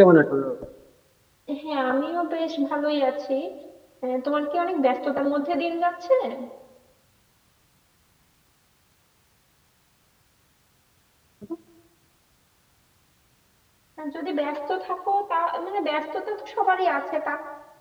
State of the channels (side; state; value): both; identical; correlation 1.00